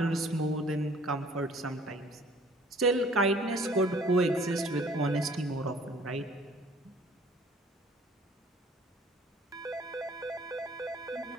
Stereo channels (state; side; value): normal; both; correlation 0.54